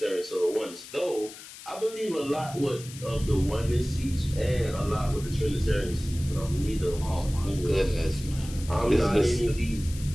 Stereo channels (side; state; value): left; noise; hiss, 15 dB below the sound